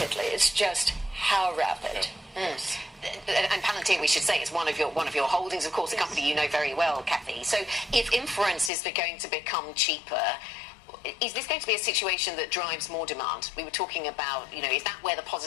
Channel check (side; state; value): right; drops out; at 8.7 s